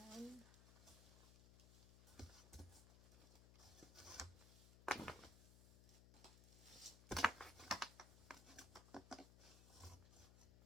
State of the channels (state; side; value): noise; left; hum, 15 dB below the sound